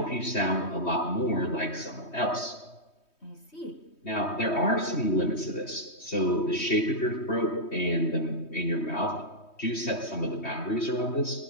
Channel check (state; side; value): late; right; 3.2 ms